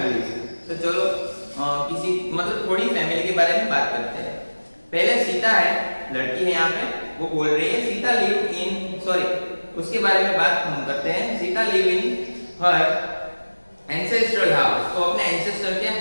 तो चलो किसी मतलब थोड़ी फैमिली के बारे में बात करते हैं। पहले सीता है, लड़की है यहाँ पे, वो बोल रही है सीता लिव इन, सॉरी उसके बारे में बात हम करते हैं। Sita live in her ancestral house. तो अपने एंसेस्टर के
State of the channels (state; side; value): inverted; both; correlation -1.00